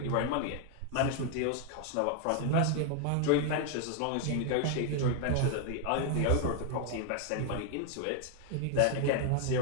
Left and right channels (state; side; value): different; both; correlation 0.00